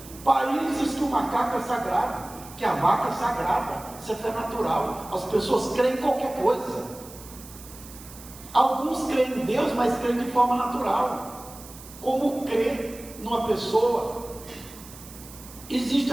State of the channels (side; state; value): right; noise; hiss, 17 dB below the sound